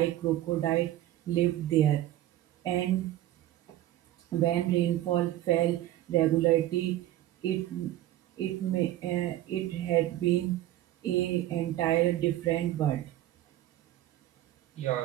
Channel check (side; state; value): left; quieter; 14.2 dB